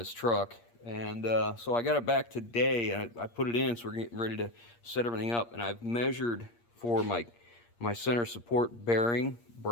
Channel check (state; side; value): late; right; 8.6 ms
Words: truck. And so I got it back today, and I put it in, so we're getting ready to set everything up. And I've measured for my center support bearing